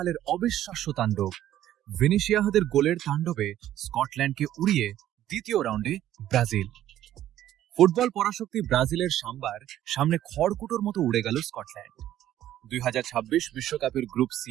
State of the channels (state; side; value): quieter; left; 12.5 dB